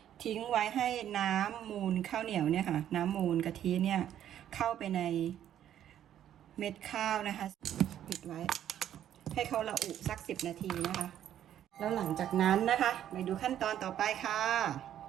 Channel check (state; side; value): quieter; left; 10.8 dB